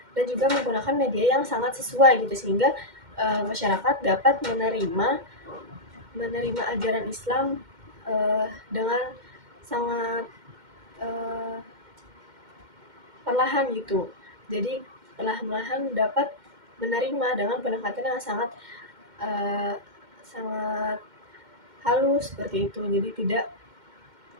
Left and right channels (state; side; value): late; left; 2.1 ms